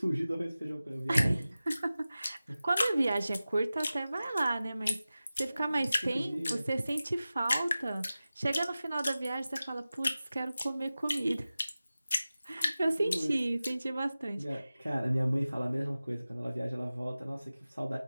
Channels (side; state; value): both; inverted; correlation -0.96